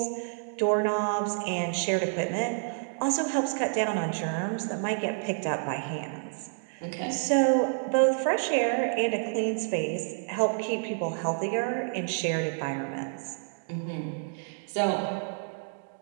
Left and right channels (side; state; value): left; silent; digital silence